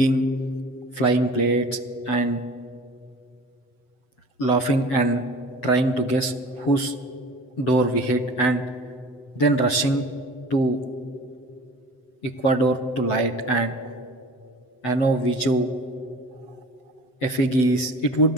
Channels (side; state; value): right; late; 7.9 ms